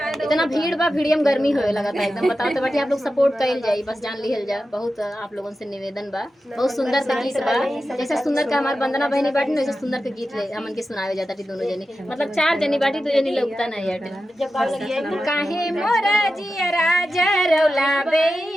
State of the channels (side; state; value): both; normal; correlation 0.92